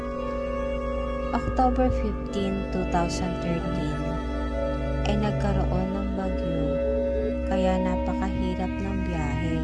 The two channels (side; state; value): both; identical; correlation 1.00